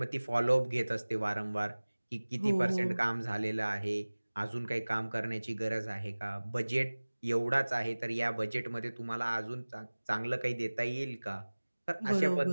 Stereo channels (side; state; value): both; inverted; correlation -1.00